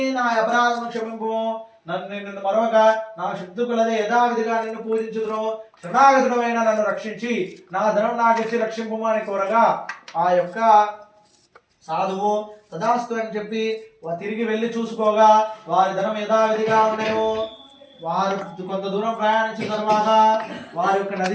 నా అపరాధం క్షమింపు, నిన్ను మరొక నా శక్తి కొలదే యథావిధిగా నిన్ను పూజించుదును, శరణాగతుడమైన నన్ను రక్షించి నా ధనం నాకిచ్చి రక్షింపు అని కోరగా ఆ యొక్క సాధువు తదాస్తు అని చెప్పి తిరిగి వెళ్ళి చూసుకోగా వారి ధనం యథావిధిగా ఉన్నాయో. వారు కొంత దూరం ప్రయాణించిన తర్వాత వారి యొక్క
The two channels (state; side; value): identical; both; correlation 1.00